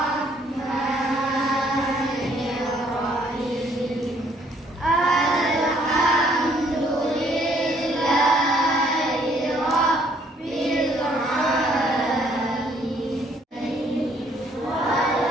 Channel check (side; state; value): both; normal; correlation 0.64